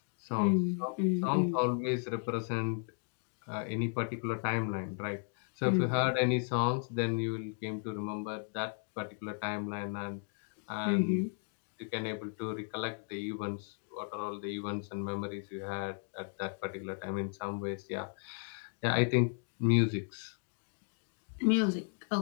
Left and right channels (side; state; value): right; silent; 54 dB below the other